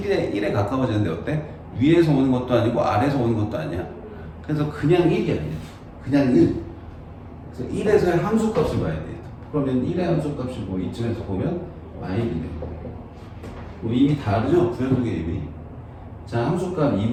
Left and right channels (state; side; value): identical; both; correlation 1.00